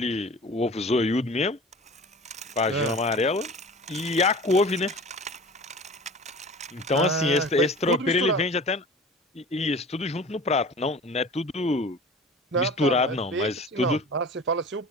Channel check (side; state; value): both; normal; correlation 0.39